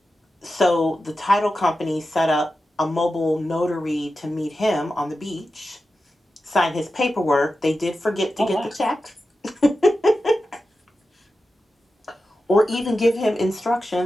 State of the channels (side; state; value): both; normal; correlation 0.92